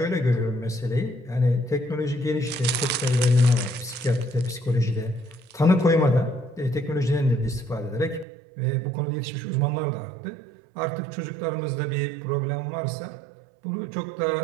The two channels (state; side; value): drops out; left; at 8.2 s